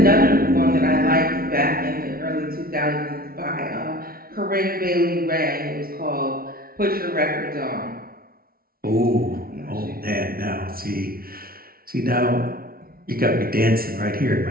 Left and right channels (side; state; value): left; late; 0.43 ms